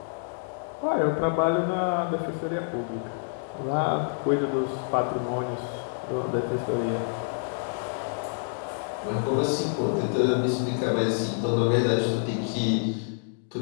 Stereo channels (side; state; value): right; silent; digital silence